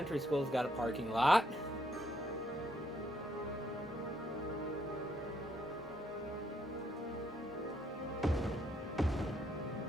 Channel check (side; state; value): both; normal; correlation 0.73